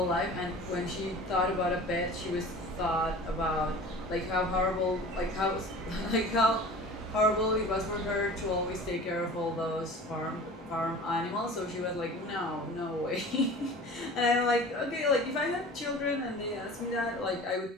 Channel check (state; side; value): normal; both; correlation 0.40